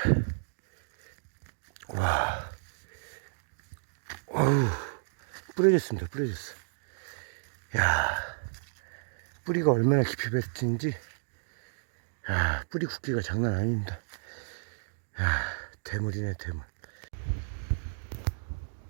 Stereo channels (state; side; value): silent; left; digital silence